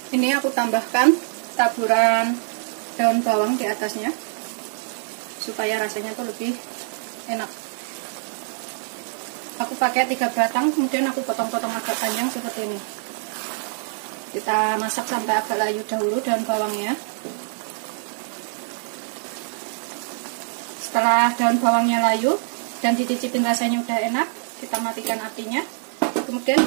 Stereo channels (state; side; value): silent; left; digital silence